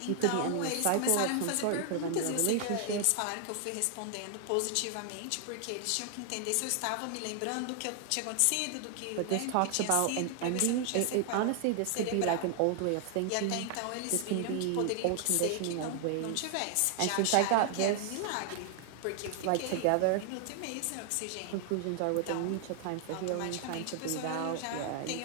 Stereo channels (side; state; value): both; different; correlation 0.00